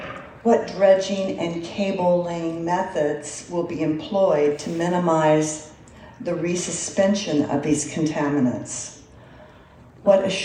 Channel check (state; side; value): identical; both; correlation 1.00